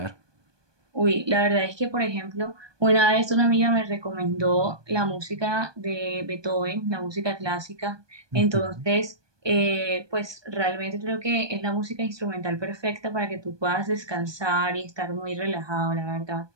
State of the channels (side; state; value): left; late; 1.2 ms